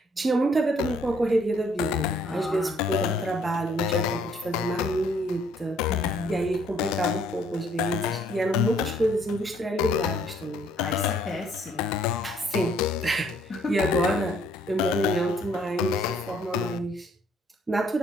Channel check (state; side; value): normal; both; correlation 0.64